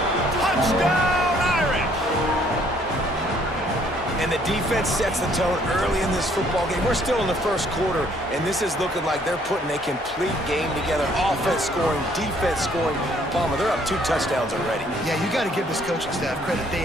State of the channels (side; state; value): both; normal; correlation 0.63